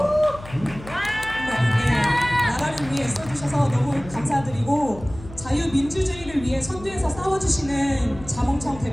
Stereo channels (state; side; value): noise; left; hum, 16 dB below the sound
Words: 나라를 위해 써주셔서 너무 감사드리고 자유민주주의를 위해 선두에서 싸워주시는 자몽청